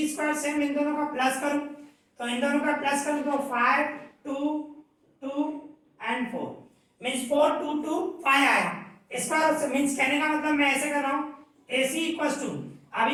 स्क्वायर सेम इन दोनों का प्लस करूं तो इन दोनों का प्लस करूं तो 5 2 2 एंड 4 मींस 4 2 2 5 आया। इसका मींस कहने का मतलब मैं ऐसे कर रहा हूं AC इक्वल्स टू,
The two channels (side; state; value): both; identical; correlation 1.00